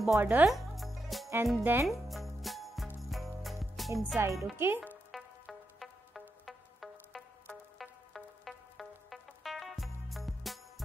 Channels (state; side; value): normal; both; correlation 0.85